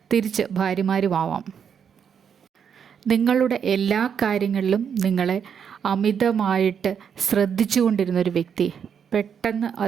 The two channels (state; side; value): quieter; left; 7.5 dB